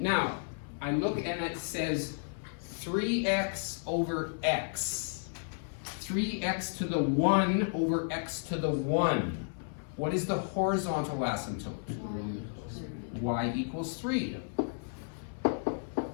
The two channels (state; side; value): silent; right; 56 dB below the other